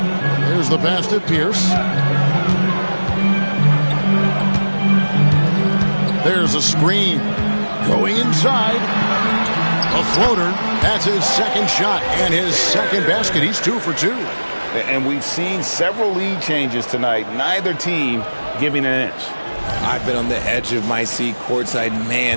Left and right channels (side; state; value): both; inverted; correlation -1.00